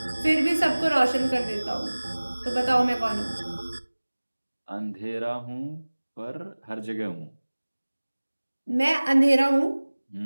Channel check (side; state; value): both; inverted; correlation -1.00